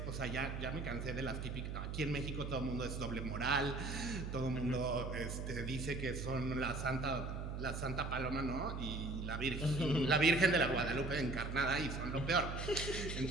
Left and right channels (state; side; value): noise; right; hum, 4 dB below the sound